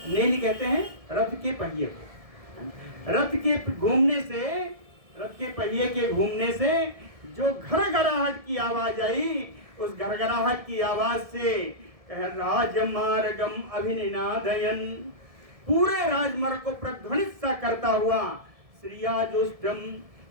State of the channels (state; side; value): late; left; 1.7 ms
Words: नेमि कहते हैं रथ के पहिए को, रथ के घूमने से, रथ के पहिए के घूमने से जो घरघराहट की आवाज आई, उस घरघराहट की आवाज से राजमार्गम अभिनिनादयन, पूरे राजमार्ग को प्रध्वनित सा करता हुआ, श्रियाजुष्टम,